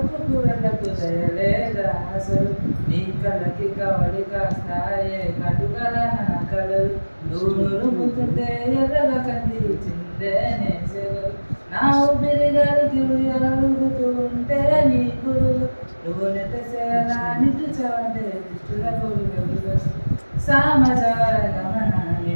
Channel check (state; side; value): inverted; both; correlation -1.00